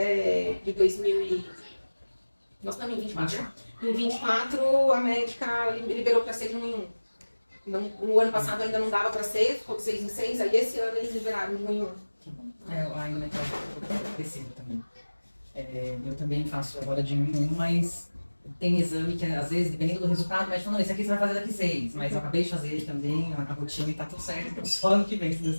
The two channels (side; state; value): both; inverted; correlation -1.00